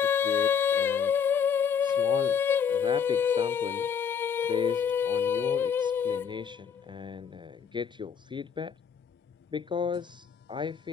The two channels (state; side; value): quieter; right; 7.1 dB